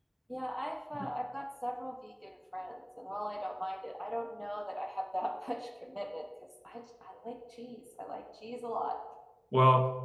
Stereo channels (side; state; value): both; identical; correlation 1.00